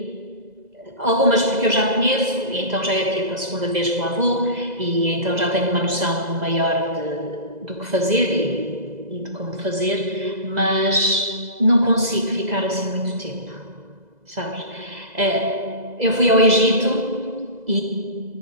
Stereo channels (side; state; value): left; late; 2.0 ms